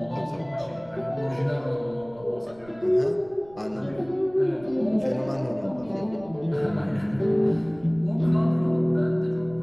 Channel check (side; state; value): right; noise; rumble, 24 dB below the sound